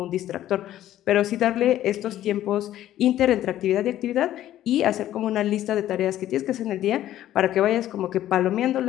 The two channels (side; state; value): right; quieter; 12.9 dB